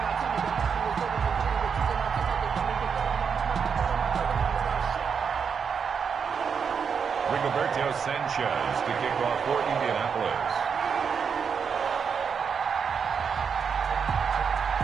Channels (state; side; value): quieter; left; 6.5 dB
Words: Rigoberto Sanchez to kick off for Indianapolis.